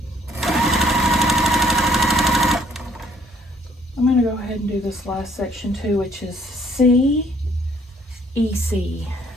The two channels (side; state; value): both; normal; correlation 0.63